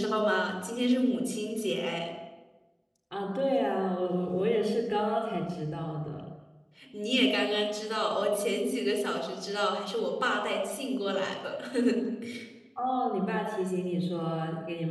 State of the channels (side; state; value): both; identical; correlation 1.00